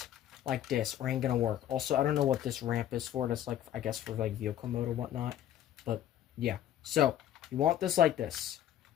Like this, or ain't gonna work. Also, I don't know what this ramp is for. That's like, I guess, for like vehicle mode or whatnot. But, yeah. So, you want this like this.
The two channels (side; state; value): right; quieter; 11.3 dB